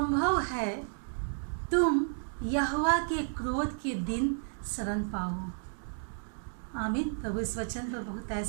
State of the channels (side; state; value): left; silent; digital silence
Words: है तुम यहोवा के क्रोध के दिन शरण पाओ। आमीन। प्रभु इस वचन पर बहुत